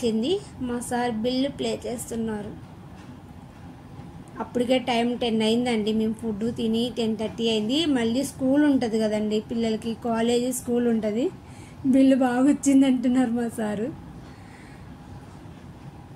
మా సార్ బిల్లు ప్లే చేస్తున్నారు. అప్పటికే టైం 10 అయిందండి. మేము ఫుడ్ తిని 10:30 అయింది. మళ్ళీ స్కూల్ ఉంటుంది కదండి పిల్లలకి, కాలేజీ స్కూల్ ఉంటుంది. బిల్లు బాగా వచ్చింది అంటున్నారు మా సారు.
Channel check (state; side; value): identical; both; correlation 1.00